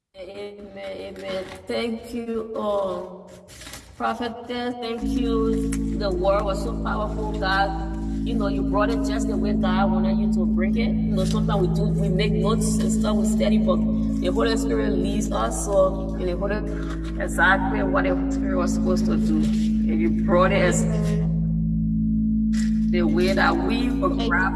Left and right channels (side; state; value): both; identical; correlation 1.00